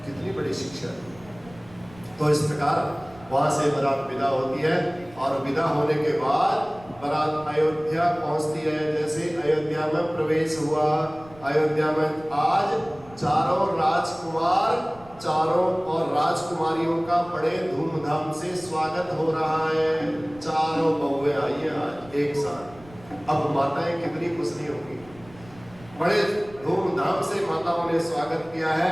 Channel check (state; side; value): noise; right; rumble, 22 dB below the sound